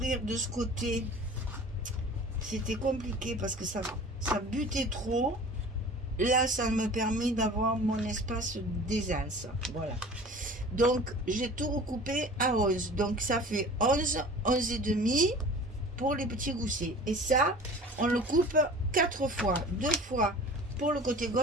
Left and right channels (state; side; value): normal; both; correlation 0.41